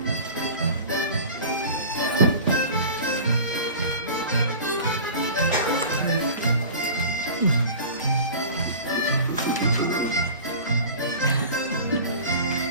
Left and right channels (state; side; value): inverted; both; correlation -0.38